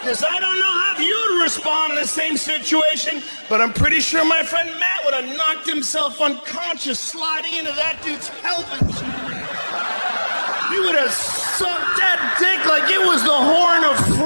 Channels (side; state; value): both; inverted; correlation -1.00